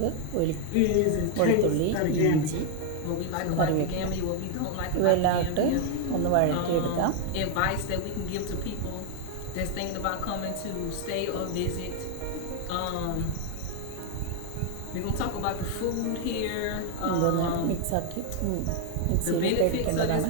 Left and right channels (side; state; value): both; different; correlation 0.01